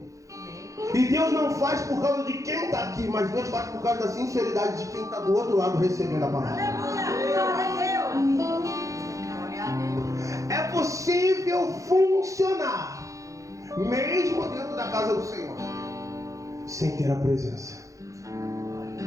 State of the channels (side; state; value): left; late; 0.16 ms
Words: E Deus não faz por causa de quem está aqui, mas Deus faz por causa da sinceridade de quem está do outro lado recebendo a palavra. É possível funcionar mesmo dentro da casa do Senhor sem ter a presença.